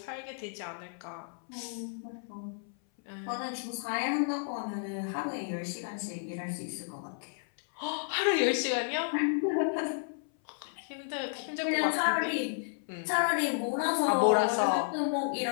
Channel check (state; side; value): silent; right; 56 dB below the other